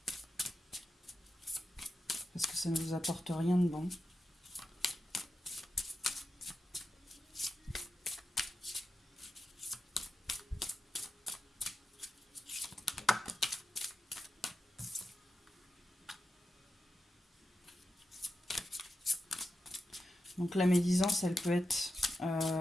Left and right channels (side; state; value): both; normal; correlation 0.89